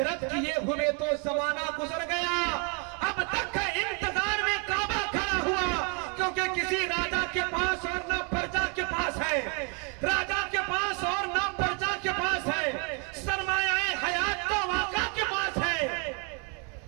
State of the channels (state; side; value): quieter; left; 35.9 dB